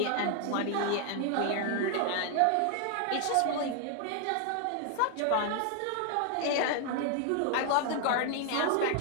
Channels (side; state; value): both; different; correlation 0.00